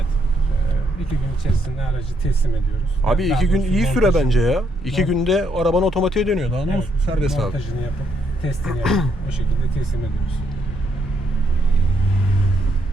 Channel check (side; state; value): both; normal; correlation 0.74